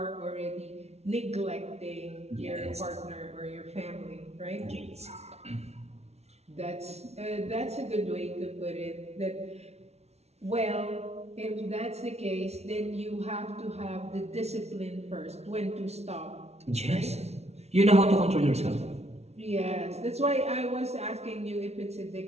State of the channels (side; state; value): left; late; 0.31 ms